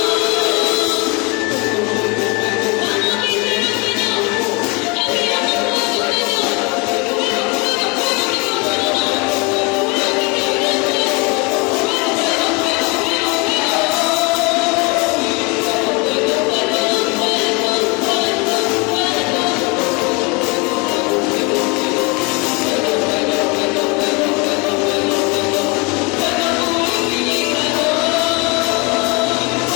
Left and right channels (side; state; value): right; quieter; 29.1 dB